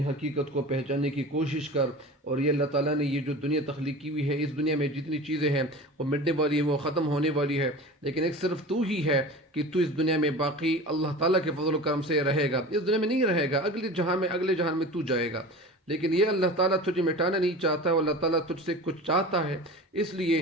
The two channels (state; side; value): normal; both; correlation 0.35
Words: حقیقت کو پہچاننے کی کوشش کر، اور یہ اللہ تعالیٰ نے یہ جو دنیا تخلیق کی ہوئی ہے، اس دنیا میں جتنی چیزیں ہیں وہ مٹنے والی ہیں، وہ ختم ہونے والی ہے، لیکن ایک صرف تو ہی ہے کہ تو اس دنیا میں باقی اللہ تعالیٰ کے فضل و کرم سے رہے گا، اس دنیا میں نہیں رہے گا، اگلے جہان میں تو جائے گا، لیکن یہ اللہ تعالیٰ تجھے مٹانا نہیں چاہتا، اور اللہ تعالیٰ تجھ سے کچھ چاہتا ہے، اس